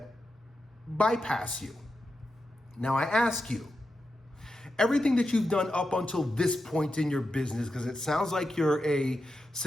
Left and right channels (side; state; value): both; normal; correlation 0.88